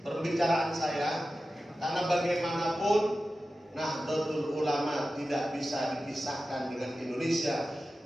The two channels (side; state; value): both; normal; correlation 0.94